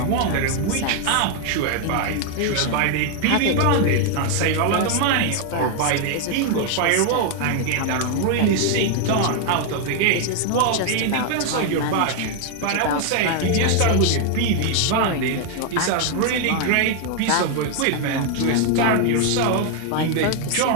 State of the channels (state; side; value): different; both; correlation 0.00